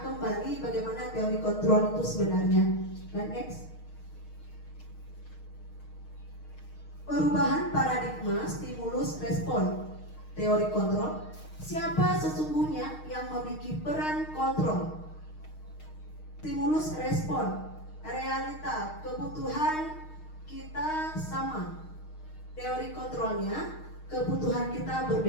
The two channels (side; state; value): right; late; 6.5 ms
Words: bagaimana teori kontrol itu sebenarnya. Dan next. Perubahan paradigma stimulus respon. Teori kontrol. Siapa sesungguhnya yang memiliki peran kontrol? Stimulus respon. Realita, kebutuhan kita sama. Teori kontrolnya, kebutuhan kita